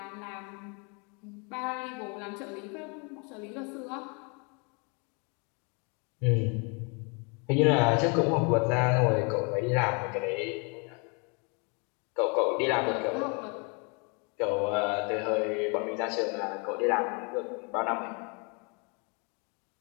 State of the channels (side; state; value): right; quieter; 33.6 dB